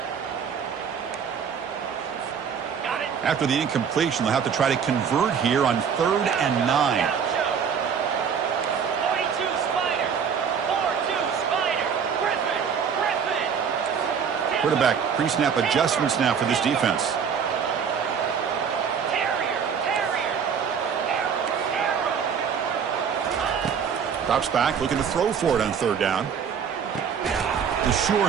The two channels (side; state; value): left; quieter; 7.0 dB